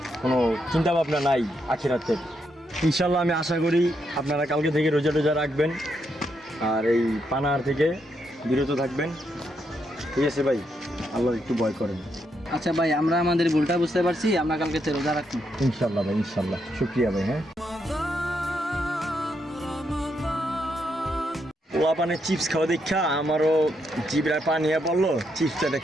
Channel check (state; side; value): normal; both; correlation 0.79